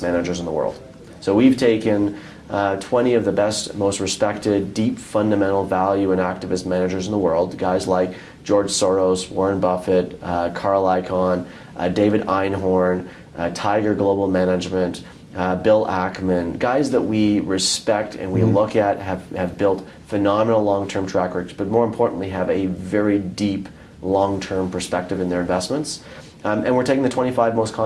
managers in the world. So we've taken 20 of the best, most respected, deep fundamental value and activist managers in the world, guys like George Soros, Warren Buffett, Carl Icahn, David Einhorn, Tiger Global Management, Bill Ackman, guys that we respect and we look at have built phenomenal long-term track records, but more importantly have a very deep long-term perspective in their investments. And we're taking the 25 most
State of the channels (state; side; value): identical; both; correlation 1.00